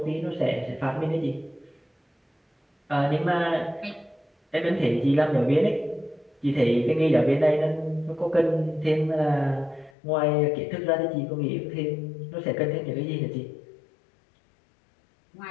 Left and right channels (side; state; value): right; drops out; at 9.9 s